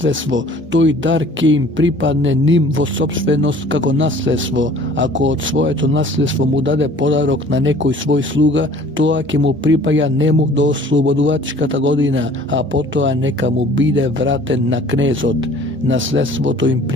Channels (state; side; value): normal; both; correlation 0.51